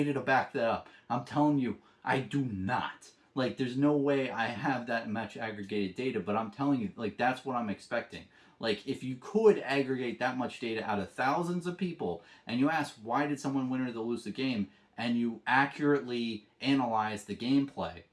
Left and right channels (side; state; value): both; identical; correlation 1.00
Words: to back that up. I'm telling you, I do not. Like, there's no way I have that much aggregated data, but I'm telling you, like, that's what I'm expecting. Like, if you could aggregate that much data out of thousands of people, and you ask, why did someone win or lose the game, and you accurately analyze the gameplay,